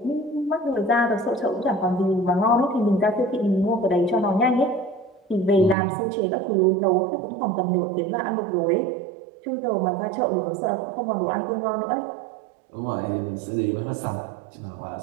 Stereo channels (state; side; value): drops out; left; at 5.8 s